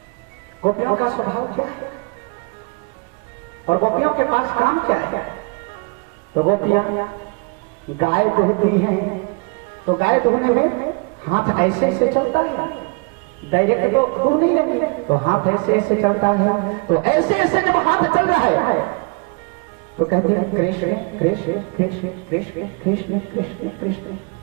गोपियों का स्वभाव क्या है और गोपियों के पास काम क्या है? तो गोपियां गाय दुहती हैं, तो गाय दुहने में हाथ ऐसे ऐसे चलता है, डायरेक्ट तो दूर नहीं लगी, तो हाथ ऐसे ऐसे चलता है। तो ऐसे ऐसे जब हाथ चल रहा है तो कहती है कृष्ण कृष्ण कृष्ण कृष्ण कृष्ण कृष्ण कृष्ण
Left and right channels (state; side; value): quieter; left; 31.4 dB